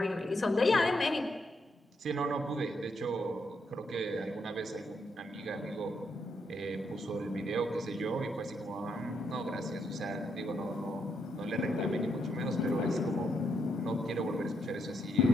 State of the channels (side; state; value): both; normal; correlation 0.78